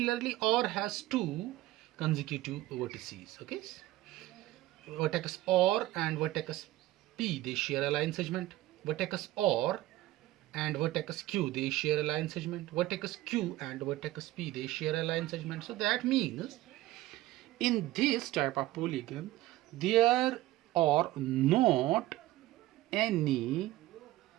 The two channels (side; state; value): left; quieter; 16.5 dB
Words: R has two consecutive vertices. Okay, vertex R and vertex P, they share a line segment. Vertex R and vertex Q, they share a line segment. Vertex Q and vertex P, they share a line segment. So that means in this type of polygon there are not any